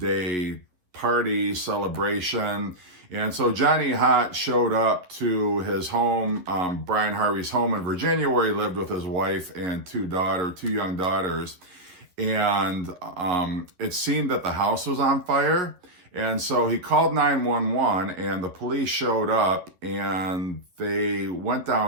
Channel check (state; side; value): late; left; 11 ms